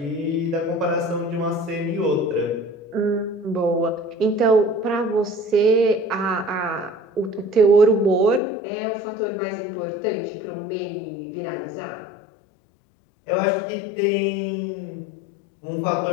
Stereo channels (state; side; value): drops out; right; at 8.4 s